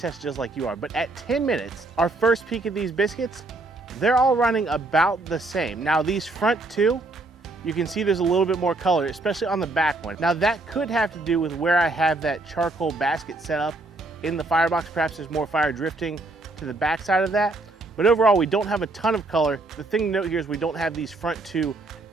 just like you are. But at 10 minutes, our first peek at these biscuits, they're all running about the same. Now these front 2, you can see there's a little bit more color, especially on the back one. Now that could have to do with where I have that charcoal basket set up in the firebox. Perhaps there's more fire drifting to the back side of that. But overall, we don't have a ton of color. The thing to note here is we don't have these front 2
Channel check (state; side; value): quieter; left; 3.0 dB